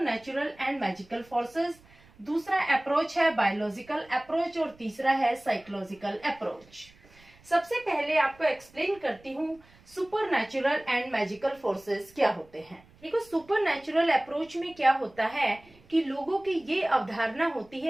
natural and magical forces, दूसरा अप्रोच है बायोलॉजिकल अप्रोच और तीसरा है साइकोलॉजिकल अप्रोच। सबसे पहले आपको एक्सप्लेन करती हूँ super natural and magical forces क्या होते हैं। देखो, सुपर नेचुरल अप्रोच में क्या होता है कि लोगों की ये अवधारणा होती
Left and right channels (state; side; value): noise; right; rumble, 27 dB below the sound